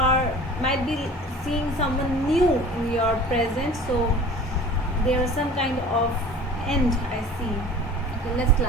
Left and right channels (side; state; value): both; normal; correlation 0.43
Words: might be seeing someone new in your present. So there is some kind of end I see. Okay, let's